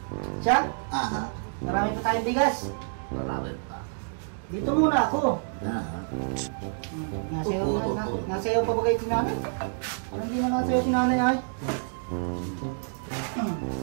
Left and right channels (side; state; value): left; silent; digital silence